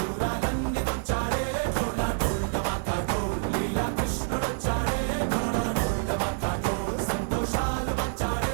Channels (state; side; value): silent; left; digital silence